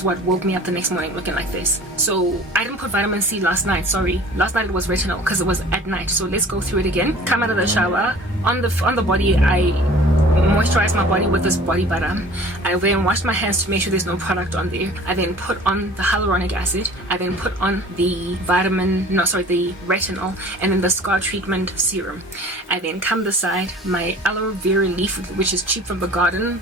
what woke me up the next morning looking like this. So I didn't put vitamin C last night. Sorry, last night it was retinol because it was at night. So let's go through it again. Come out of the shower. On the body, I moisturize my body with this body butter. I then wash my hands to make sure there's no product on there. I then put on the hyaluronic acid. I then put on the retinol, and then the scar treatment serum. I then come beside my aloe vera leaf, which is cheap from the garden,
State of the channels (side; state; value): both; normal; correlation 0.46